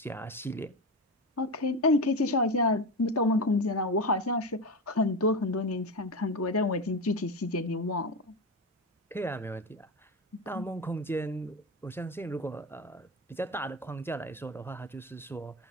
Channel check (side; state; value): both; normal; correlation 0.19